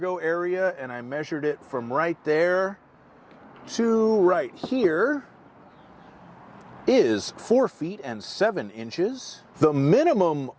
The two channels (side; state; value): both; identical; correlation 1.00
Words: area, and I measured it from right there to right here, is 4 feet and 7 inches. The minimum